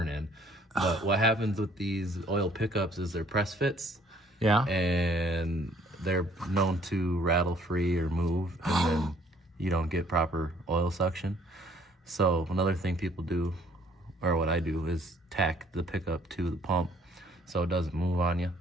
in. But what happens with these oil pickups is they're press fits. Yeah. And they're known to rattle free or move. And then you don't get proper oil suction. So another thing people do, or what I do, is tack the pickup to the pump so it doesn't move on you.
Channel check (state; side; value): normal; both; correlation 0.60